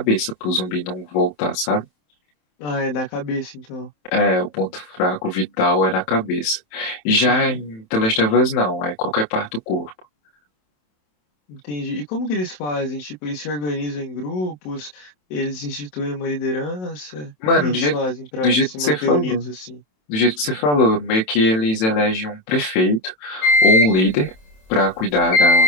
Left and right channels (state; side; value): late; right; 27 ms